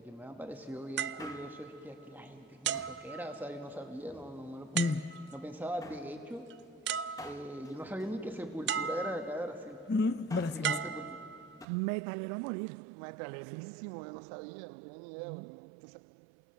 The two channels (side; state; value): left; drops out; at 11.7 s